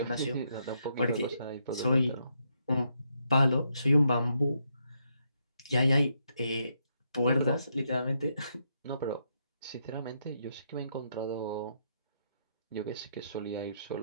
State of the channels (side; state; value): both; inverted; correlation -0.78